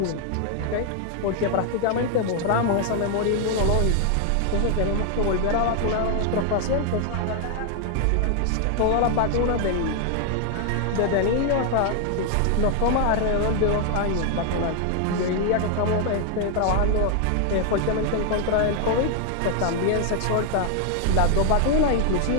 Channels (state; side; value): different; both; correlation 0.00